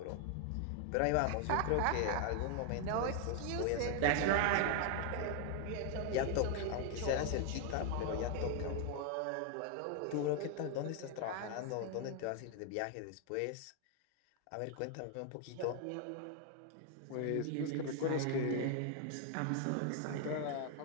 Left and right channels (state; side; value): different; both; correlation 0.00